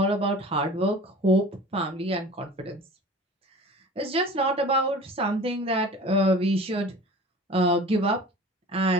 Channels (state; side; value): normal; both; correlation 0.40